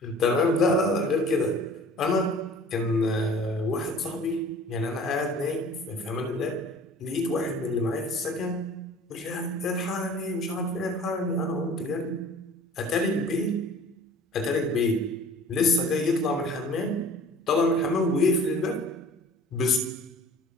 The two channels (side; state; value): both; normal; correlation 0.46